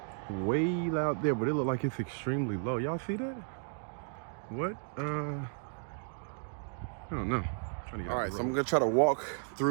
way out there, but it look like it's extremely low. Y'all see that? What? I don't know. All right, so I'm gonna try to walk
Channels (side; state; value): left; silent; 55 dB below the other